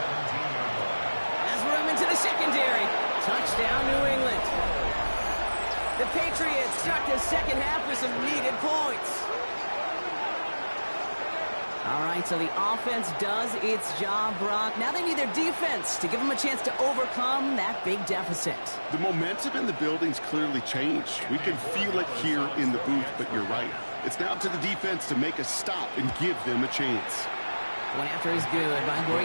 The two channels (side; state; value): both; inverted; correlation -1.00